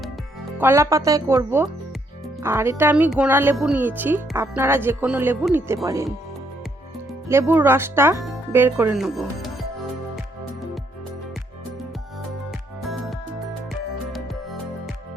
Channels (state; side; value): normal; both; correlation 0.72